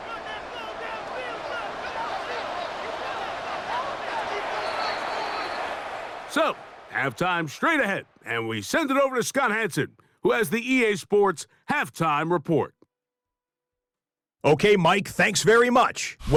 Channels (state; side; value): identical; both; correlation 1.00